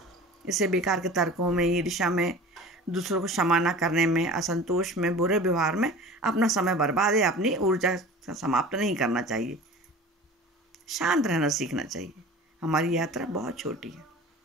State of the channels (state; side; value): normal; both; correlation 0.39